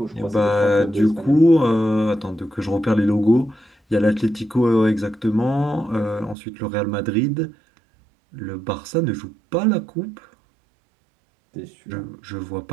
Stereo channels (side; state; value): left; drops out; at 6.4 s